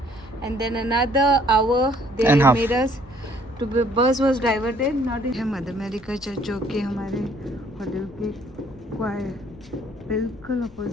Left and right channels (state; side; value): noise; left; rumble, 22 dB below the sound